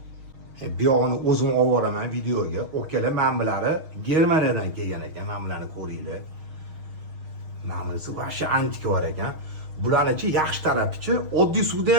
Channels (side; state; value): left; late; 6.5 ms